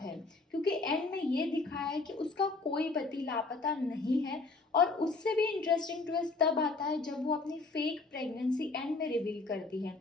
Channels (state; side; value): quieter; right; 3.7 dB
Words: है, क्योंकि एंड में ये दिखाया है कि उसका कोई पति लापता नहीं है। और उससे भी इंटरेस्टिंग ट्विस्ट तब आता है जब वो अपनी फेक प्रेगनेंसी एंड में रिवील करती है।